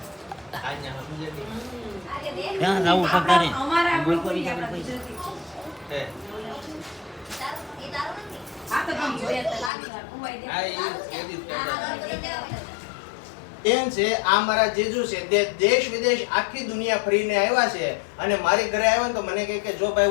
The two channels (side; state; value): right; drops out; at 9.7 s